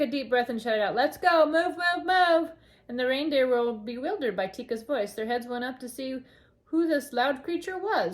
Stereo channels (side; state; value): both; identical; correlation 1.00